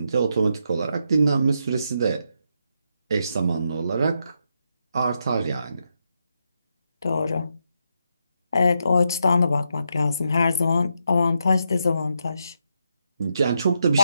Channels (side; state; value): both; inverted; correlation -0.81